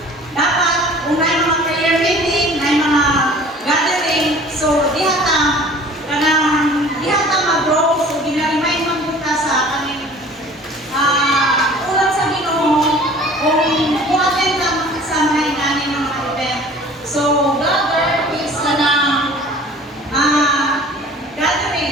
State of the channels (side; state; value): both; normal; correlation 0.47